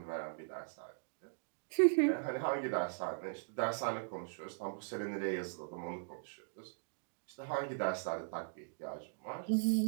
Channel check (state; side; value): silent; left; digital silence